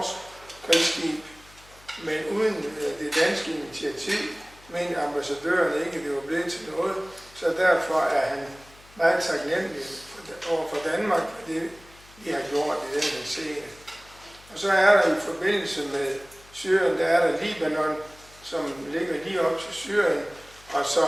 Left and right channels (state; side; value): noise; left; hum, 24 dB below the sound